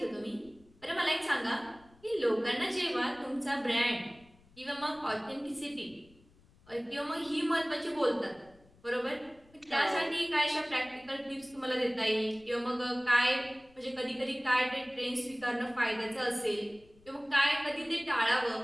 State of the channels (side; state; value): left; noise; rumble, 28 dB below the sound